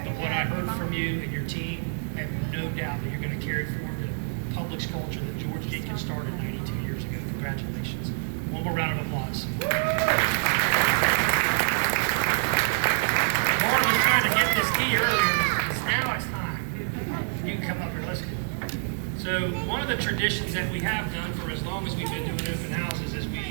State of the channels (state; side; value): silent; left; digital silence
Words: what I heard from you and your team, I have no doubt that you're going to carry forward the Publix culture that George Jenkins started 92 years ago. Congratulations. One more round of applause. Lauren was trying to get this key earlier. Now it's time. You can come up here. Let's go. So one of the traditions that we have done for as long as we've been doing open houses is